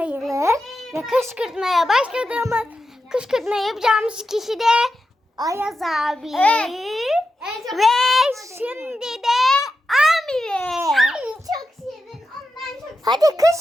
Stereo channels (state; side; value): normal; both; correlation 0.89